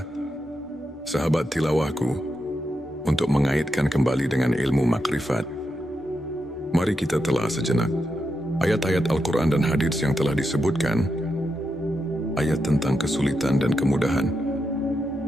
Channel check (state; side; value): normal; both; correlation 0.86